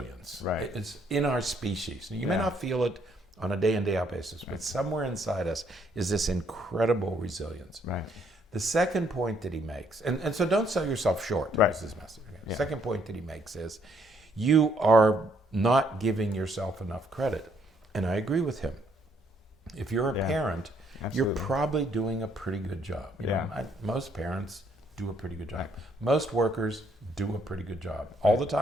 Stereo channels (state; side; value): normal; both; correlation 0.69